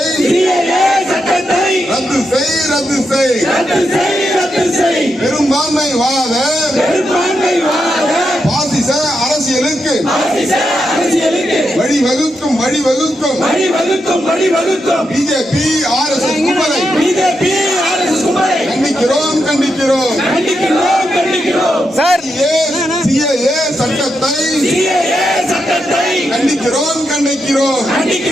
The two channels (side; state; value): both; normal; correlation 0.84